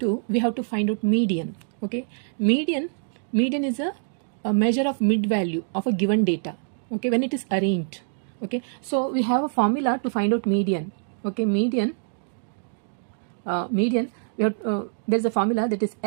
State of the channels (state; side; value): silent; left; digital silence